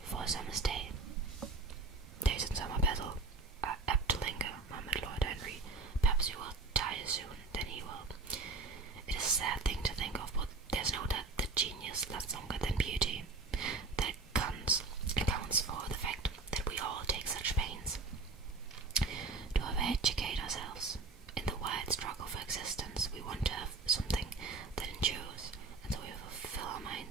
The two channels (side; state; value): left; quieter; 3.8 dB